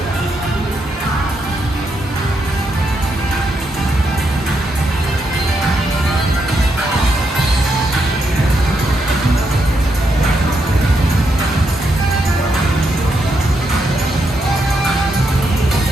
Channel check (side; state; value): both; normal; correlation 0.80